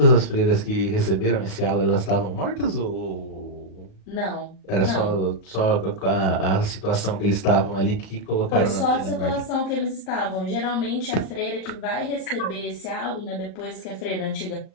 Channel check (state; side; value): late; right; 38 ms